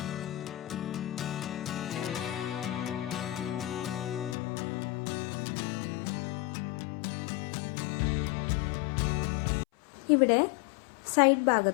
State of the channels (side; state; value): right; drops out; at 4.4 s